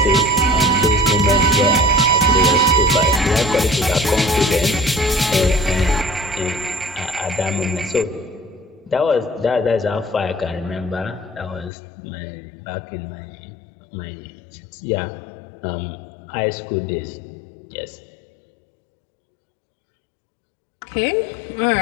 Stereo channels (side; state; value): right; drops out; at 11.7 s